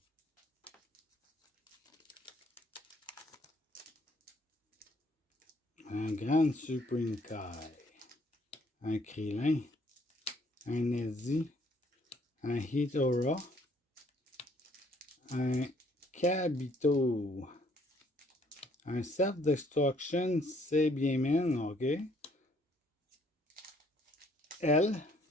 Un Grand Supreme Kai. Un Krillin. Un Nezzy. Un Hitora. Un Kabito. Un Self-Destruction, c'est bien mine, ok. L.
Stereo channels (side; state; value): both; normal; correlation 0.64